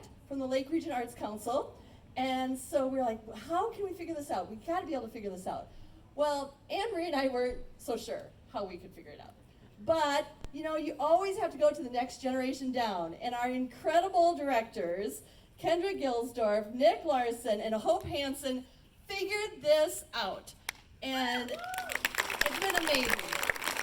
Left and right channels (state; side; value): identical; both; correlation 1.00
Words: from the Lake Region Arts Council. And so we were like, how can we figure this out? We've got to be able to figure this out. Well, Anne-Marie and I weren't so sure how we could figure it out. But, you always have to go to the next generation down. And our incredible directors, Kendra Gilsdorf, Nick Larson, and Hope Hansen, figured this out. And it's been amazing.